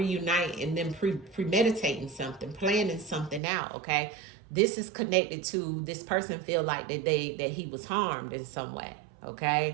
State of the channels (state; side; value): drops out; left; at 3.4 s